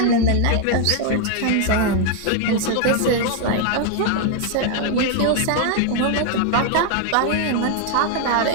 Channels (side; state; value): both; different; correlation 0.00